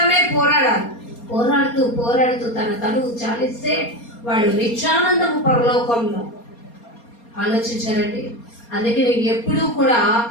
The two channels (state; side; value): late; right; 4.3 ms